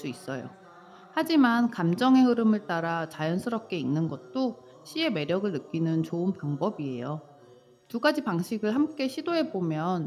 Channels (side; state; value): both; identical; correlation 1.00